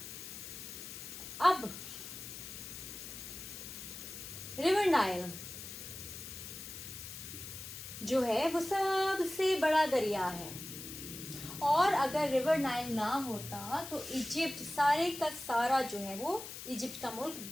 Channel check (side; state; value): left; noise; hiss, 10 dB below the sound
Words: अब रिवर नाइल जो है वो सबसे बड़ा दरिया है और अगर रिवर नाइल ना होता तो इजिप्ट सारे का सारा जो है वो इजिप्ट का मुल्क